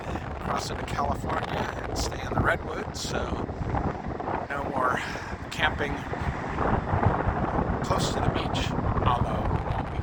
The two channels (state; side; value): identical; both; correlation 1.00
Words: across into California, and stay in the Redwoods, so no more camping close to the beach, although it won't be